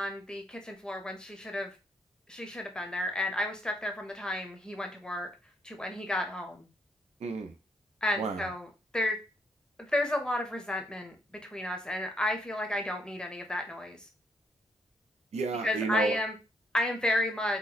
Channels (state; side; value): normal; both; correlation 0.72